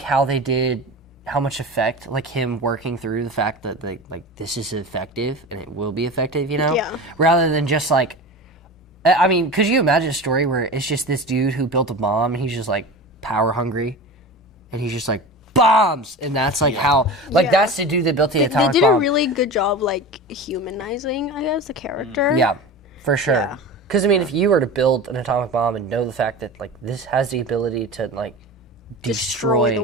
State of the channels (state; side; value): normal; both; correlation 0.31